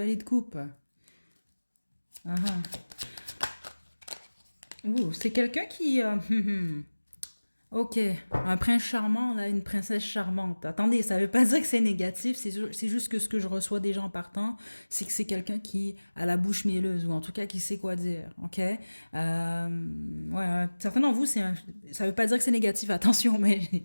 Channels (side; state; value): both; inverted; correlation -1.00